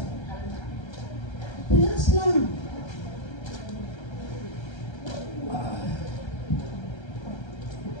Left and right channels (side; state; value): right; late; 1.3 ms